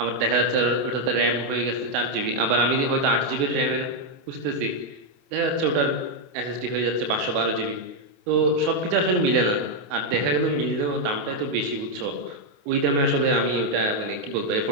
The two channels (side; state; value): left; late; 28 ms